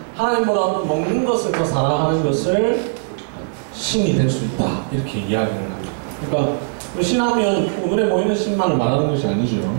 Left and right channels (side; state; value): left; silent; digital silence